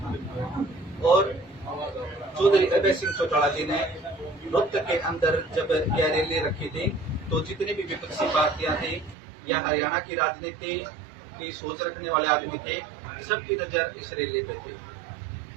और चौधरी अभय सिंह चौटाला जी ने रोहतक के अंदर जब यह रैली रखी थी तो जितनी भी विपक्षी पार्टियां थी या हरियाणा की राजनीति की सोच रखने वाले आदमी थे, सबकी नजर इस रैली पे थी।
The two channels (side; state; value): left; drops out; at 9.2 s